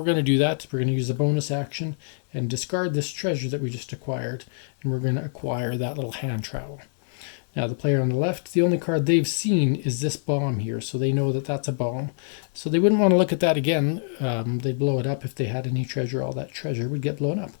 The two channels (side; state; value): right; silent; digital silence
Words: going to do that. We're going to use the bonus action and discard this treasure that we just acquired, and we're going to acquire that little hand trowel. Now, the player on the left, the only card they've seen is this bomb here, so they know that that's a bomb. So they wouldn't want to look at that again. They'd blow it up if they had any treasure. All that treasure would get blown up.